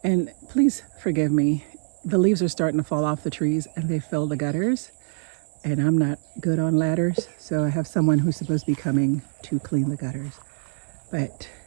And please forgive me, the leaves are starting to fall off the trees and they fill the gutters. And I'm not good on ladders, so I have someone who's supposed to be coming to clean the gutters. But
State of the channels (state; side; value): silent; left; 62 dB below the other